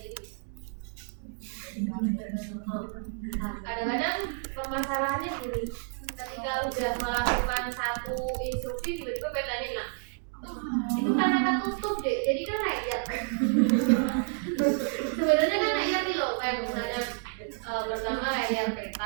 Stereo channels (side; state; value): left; silent; 58 dB below the other